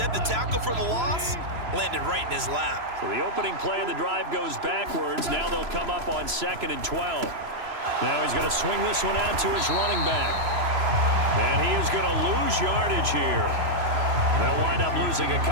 the tackle for the loss landed right in his lap. So the opening play of the drive goes backwards. Now they'll come up on 2nd and 12. Now he's going to swing this one out to his running back. And he is going to lose yardage here. They'll wind up losing a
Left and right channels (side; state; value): left; late; 3.0 ms